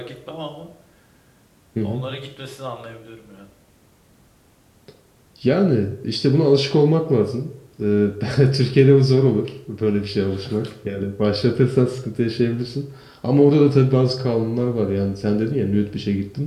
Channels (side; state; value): both; identical; correlation 1.00